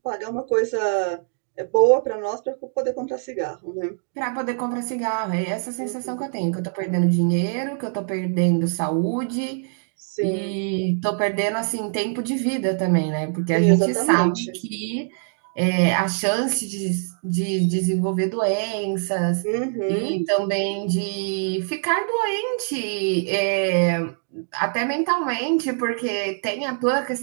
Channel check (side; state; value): left; silent; digital silence